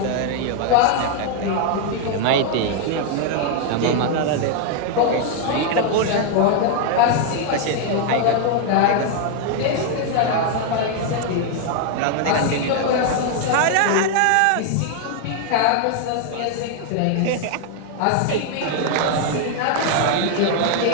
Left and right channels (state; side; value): different; both; correlation 0.00